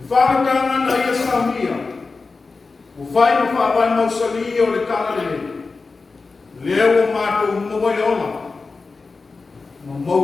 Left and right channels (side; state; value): right; quieter; 4.1 dB